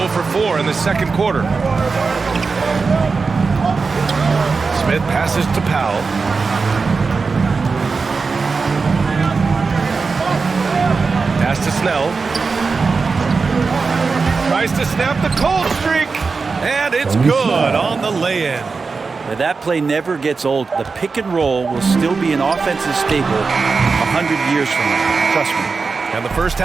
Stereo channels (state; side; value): quieter; left; 4.5 dB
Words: for 4 in the second quarter. Smith passes to Powell. Pass to Snell. Tries to snap the cold streak. And it's good on the lay-in. Now, that play never gets old. The pick and roll will still be an offensive staple 100 years from now. Trust me. And the first